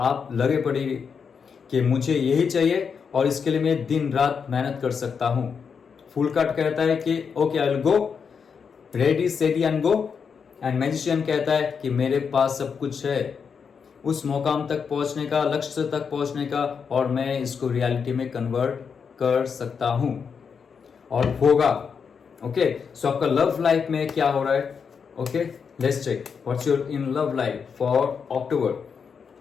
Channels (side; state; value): right; quieter; 6.2 dB